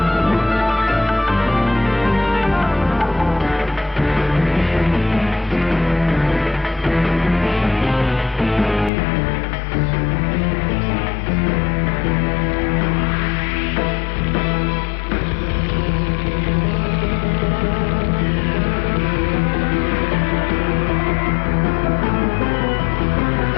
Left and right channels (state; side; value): drops out; right; at 8.9 s